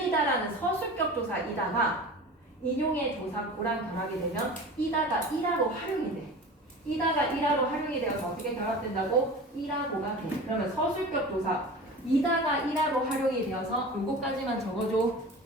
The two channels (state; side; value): normal; both; correlation 0.35